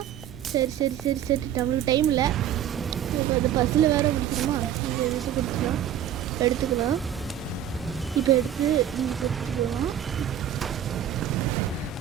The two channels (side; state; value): left; quieter; 10.4 dB